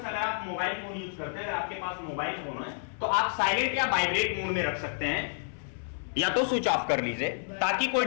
आप मोबाइल फोन यूज करते हैं, अगर आपके पास मोबाइल फोन है तो आप साइलेंट या वाइब्रेट मोड में रख सकते हैं या तो स्विच ऑफ कर लीजिए ताकि कोई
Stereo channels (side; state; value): right; silent; 58 dB below the other